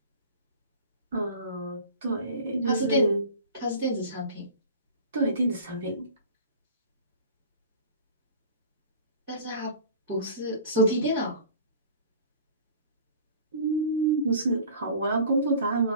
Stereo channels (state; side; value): inverted; both; correlation -0.42